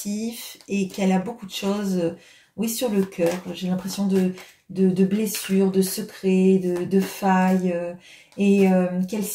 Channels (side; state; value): both; identical; correlation 1.00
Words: et qu'elle a beaucoup de choses, oui, sur le cœur. J'ai l'impression de blessures, de secrets, de failles, et qu'elle